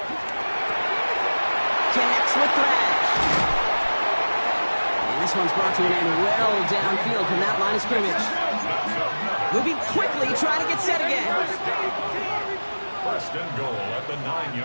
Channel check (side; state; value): both; inverted; correlation -1.00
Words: Connects with Thrash. And this one's brought to an end well downfield from that line of scrimmage. Moving quickly, trying to get set again. 1st and goal at the